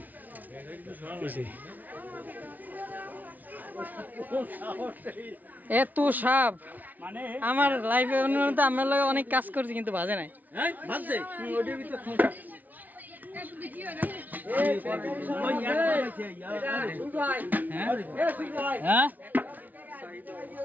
এত সাপ আমার লাইফে আমার লগে অনেক কাজ করছি কিন্তু বাজে নাই হ্যাঁ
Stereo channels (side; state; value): left; late; 0.079 ms